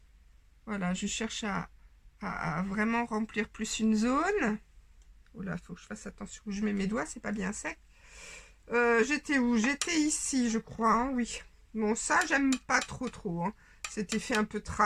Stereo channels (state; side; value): identical; both; correlation 1.00